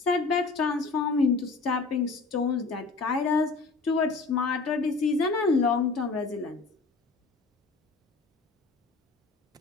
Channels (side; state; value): right; quieter; 4.1 dB